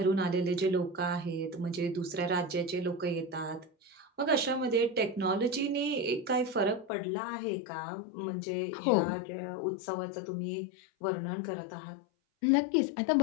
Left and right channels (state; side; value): drops out; right; at 6.9 s